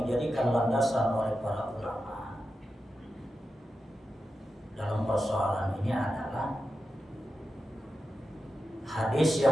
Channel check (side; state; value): both; normal; correlation 0.90